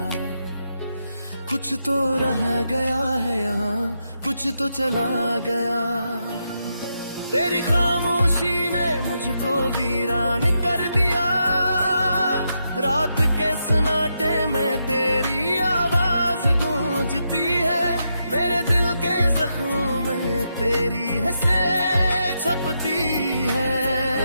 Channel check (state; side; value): inverted; both; correlation -0.83